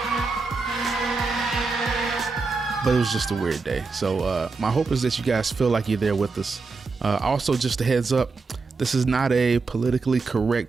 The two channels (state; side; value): quieter; left; 4.3 dB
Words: But it was just a weird day. So my hope is that you guys feel like you're there with us. Also, just a heads up, this is not a politically